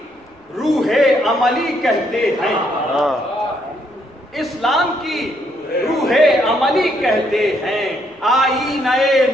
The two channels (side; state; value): both; normal; correlation 0.72